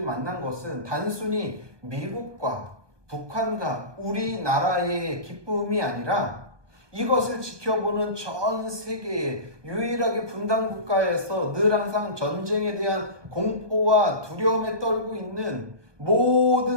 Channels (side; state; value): left; late; 1.3 ms